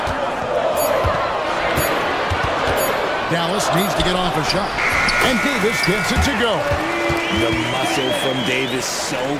Dallas needs to get off a shot. And Davis gets it to go. The muscle from Davis, so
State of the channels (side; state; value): both; identical; correlation 1.00